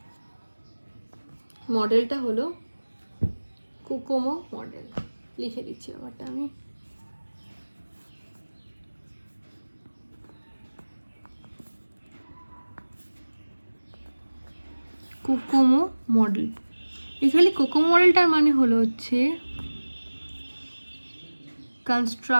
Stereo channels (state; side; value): inverted; both; correlation -1.00